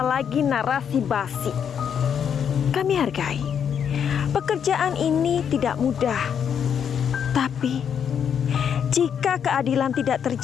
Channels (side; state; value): right; quieter; 7.9 dB